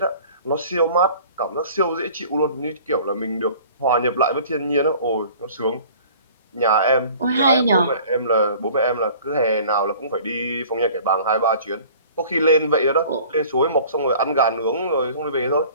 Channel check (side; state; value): both; inverted; correlation -0.48